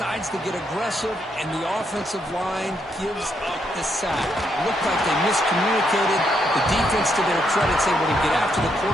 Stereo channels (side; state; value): both; normal; correlation 0.77